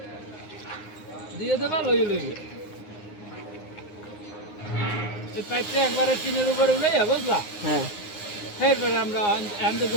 দিয়ে দেবা, লইবে। এই পাইপটা একবারে টিনের উপরে উঠাইয়া, বুঝলা? হ্যাঁ এরপরে আমরা হ্যান্ডে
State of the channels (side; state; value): right; late; 9.6 ms